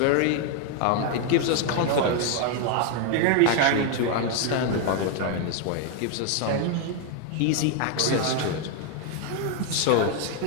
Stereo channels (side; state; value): both; different; correlation 0.01